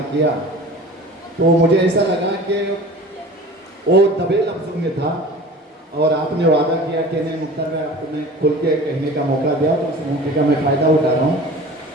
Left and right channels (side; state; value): both; normal; correlation 0.40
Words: کیا تو مجھے ایسا لگا کہ وہ دبے لفظوں میں تھا اور آپ نے وعدہ کیا کہ نہیں مختار میں آپ کو میں کھل کے کہنے کا موقع دیا تو اس موقع کا میں فائدہ اٹھا رہا ہوں.